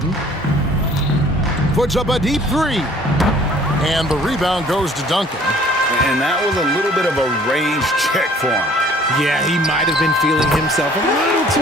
Puts up a deep three. And the rebound goes to Duncan. And that was a little bit of a range check for him. Yeah, he might have been feeling himself a little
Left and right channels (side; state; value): both; normal; correlation 0.55